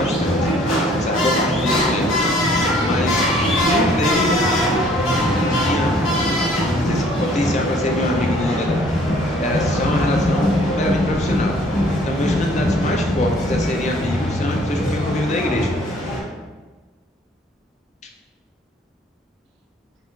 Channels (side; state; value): both; normal; correlation 0.58